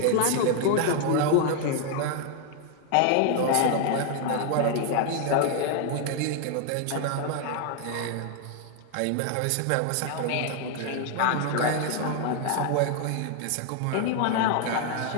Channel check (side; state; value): both; different; correlation 0.00